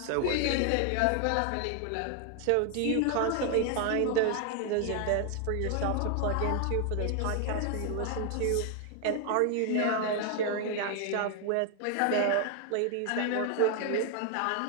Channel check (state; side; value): different; both; correlation 0.00